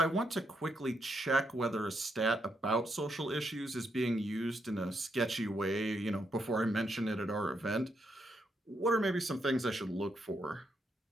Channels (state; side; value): normal; both; correlation 0.79